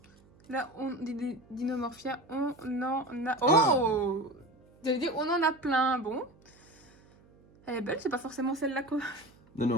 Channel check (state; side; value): noise; right; hum, 28 dB below the sound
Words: Là, des dinomorphia, on en a... Oh! J'allais dire, on en a plein. Bon. Elle est belle, c'est pas forcément celle-là quoi.